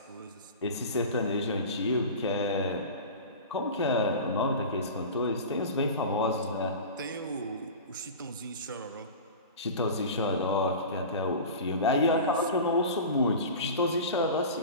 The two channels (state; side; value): inverted; both; correlation -0.33